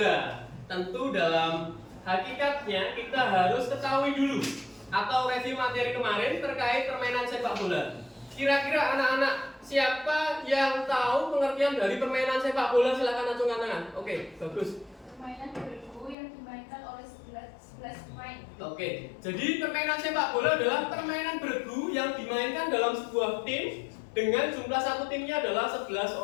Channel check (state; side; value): drops out; right; at 16.2 s